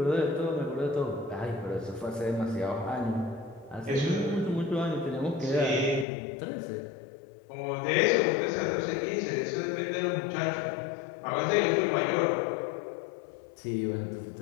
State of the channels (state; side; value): drops out; right; at 6.1 s